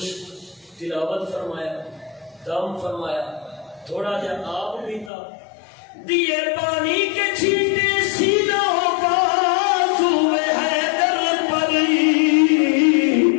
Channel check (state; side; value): drops out; right; at 5.1 s